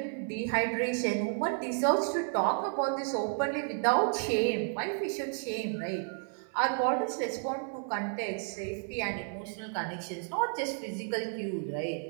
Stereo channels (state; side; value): silent; left; 56 dB below the other